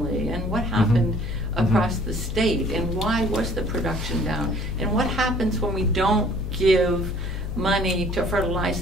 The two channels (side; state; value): left; noise; hum, 4 dB below the sound